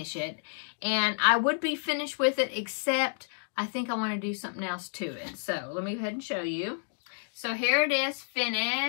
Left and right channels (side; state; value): right; silent; digital silence